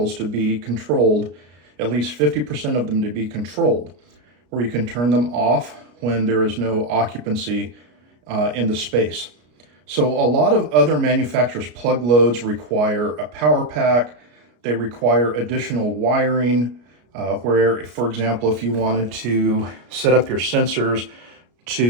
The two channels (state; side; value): late; left; 33 ms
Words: to be controlled, at least 50% of them to be controlled, where you can turn them off when there is no occupancy in the space. So a lot of other manufacturers' plug loads require a power pack. They require additional wiring where, for example, if you wanted to set up your sensors